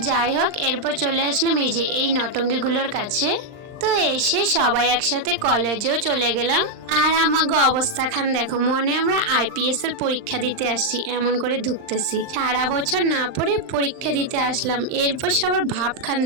যাই হোক, এরপর চলে আসলাম এই যে এই নটঙ্গিগুলোর কাছে। তো এসে সবাই একসাথে কলেজেও চলে গেলাম। আর আমাকে অবস্থা খান দেখো, মনে আমরা আইপিএস এর পরীক্ষা দিতে আসছি এমন করে ঢুকতেছি। সারা বছর না পড়ে পরীক্ষা দিতে আসলাম, এরপর সবার ভাব খান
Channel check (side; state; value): left; late; 39 ms